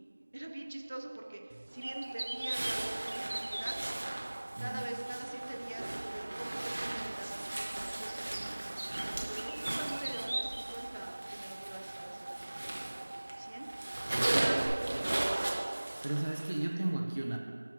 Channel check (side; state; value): both; inverted; correlation -1.00